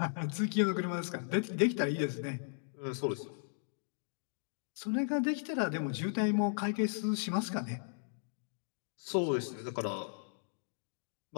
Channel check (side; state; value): right; silent; digital silence